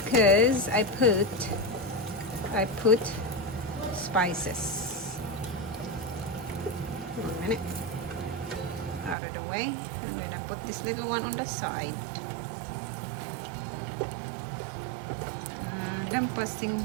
I put spices. 1 minute. Out of the way. I'm gonna put this little one on the side. Lampasing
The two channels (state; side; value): drops out; left; at 9.2 s